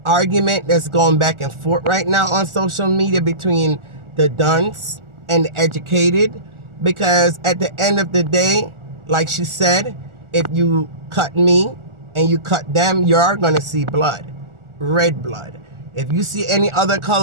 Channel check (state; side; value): late; left; 1.4 ms